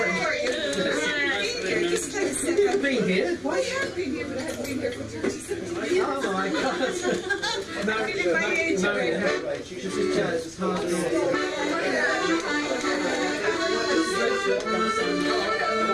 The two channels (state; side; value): identical; both; correlation 1.00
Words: You've been here. Well, I have been here, but I haven't been here for 37 years. Oh my God. She should sit chairs as hard as